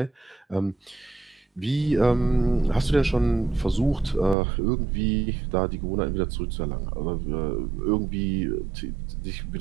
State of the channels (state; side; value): drops out; left; at 4.4 s